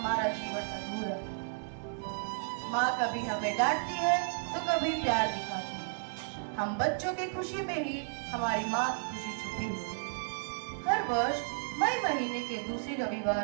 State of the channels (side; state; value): left; silent; 56 dB below the other